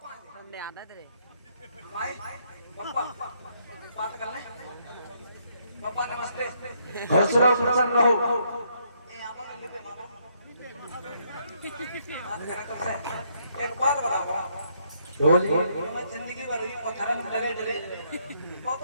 हमने आना तेरे भाई पप्पा बात कर ले। पप्पा नमस्ते। खुश रहो प्रसन्न रहो। ए आपने लिपे मारो, बात करें तुमसे। एक बात बताओ, मैं जिंदगी भर ही पत्थर में लगे डरे, वो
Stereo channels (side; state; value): both; inverted; correlation -0.72